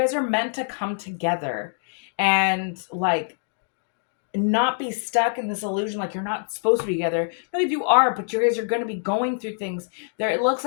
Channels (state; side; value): silent; right; digital silence